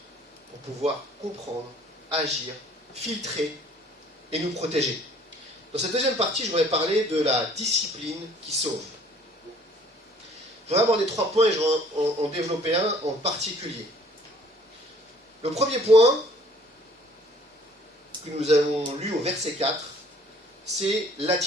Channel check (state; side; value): normal; both; correlation 0.56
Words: pour pouvoir comprendre, agir, filtrer et nous protéger. Dans cette deuxième partie, je voudrais parler de la discipline qui sauve. Je voudrais aborder 3 points et je vais en développer un en particulier. Le premier point que nous avons lu au verset 4, c'est